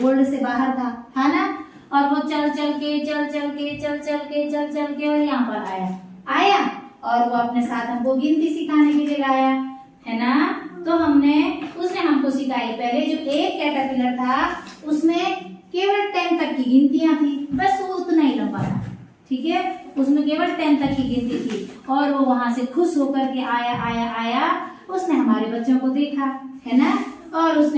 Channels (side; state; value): both; identical; correlation 1.00